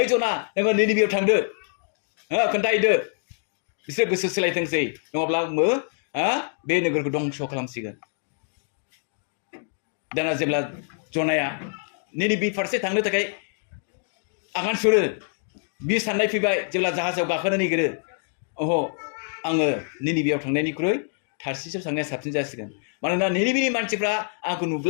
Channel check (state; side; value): silent; right; 61 dB below the other